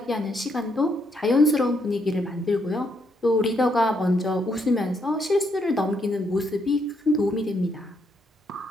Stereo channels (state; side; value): normal; both; correlation 0.75